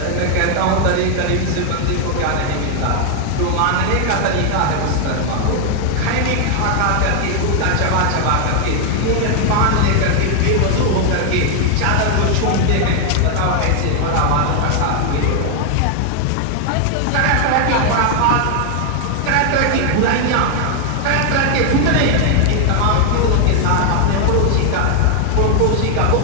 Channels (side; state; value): both; different; correlation 0.00